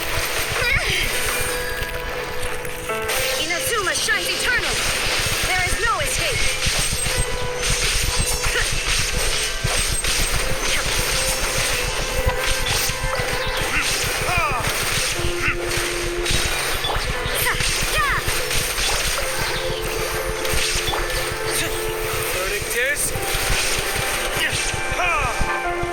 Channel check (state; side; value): identical; both; correlation 1.00